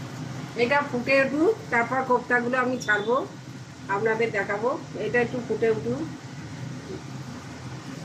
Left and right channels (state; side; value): identical; both; correlation 1.00